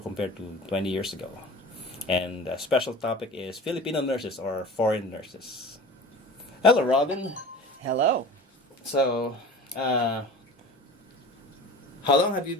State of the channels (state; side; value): normal; both; correlation 0.37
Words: years ago. And a special topic is Filipino nurses or foreign nurses. Hello, Robin. Hello. So. How long have you